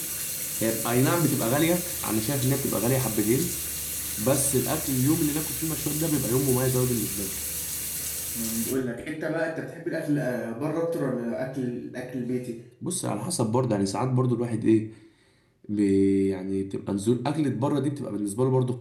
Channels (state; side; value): identical; both; correlation 1.00